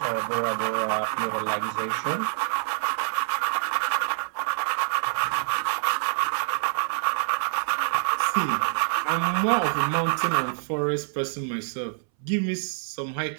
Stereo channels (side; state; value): left; silent; 61 dB below the other